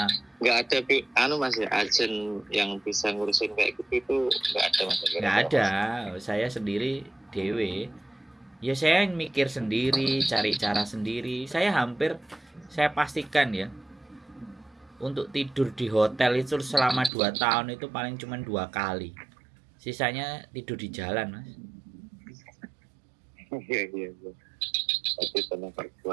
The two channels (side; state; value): left; drops out; at 17.1 s